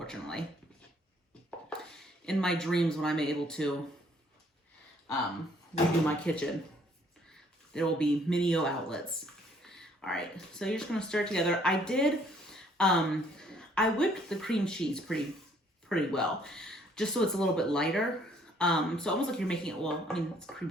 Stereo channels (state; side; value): normal; both; correlation 0.63